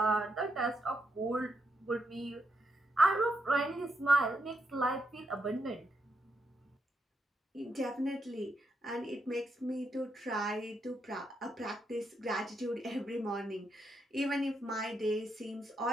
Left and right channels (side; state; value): both; normal; correlation 0.81